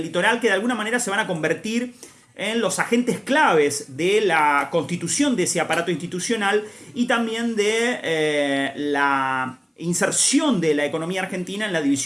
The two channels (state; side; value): identical; both; correlation 1.00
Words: litoral, que de alguna manera se van a convertir en los agentes claves de la constitución de ese aparato institucional y también de la inserción de la economía argentina en la